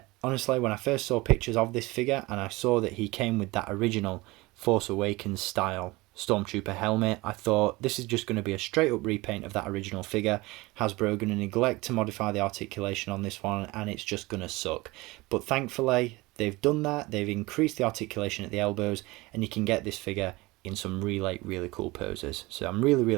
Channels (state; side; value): quieter; left; 21.9 dB